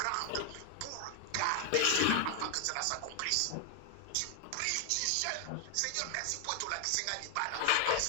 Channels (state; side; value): different; both; correlation 0.00